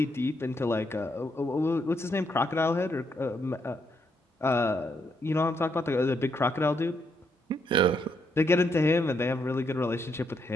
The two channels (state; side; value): normal; both; correlation 0.77